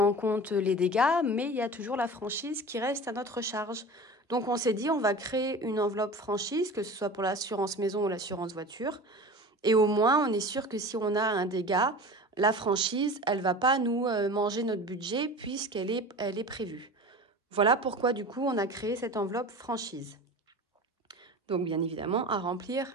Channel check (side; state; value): both; normal; correlation 0.35